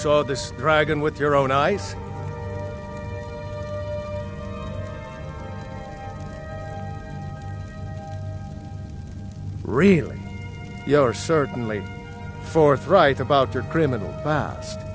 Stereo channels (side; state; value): both; identical; correlation 1.00